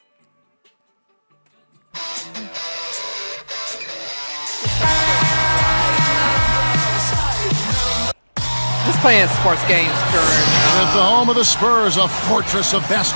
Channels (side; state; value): both; inverted; correlation -1.00